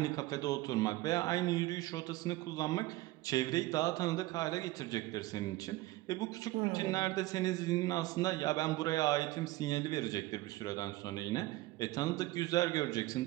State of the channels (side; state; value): left; quieter; 18.5 dB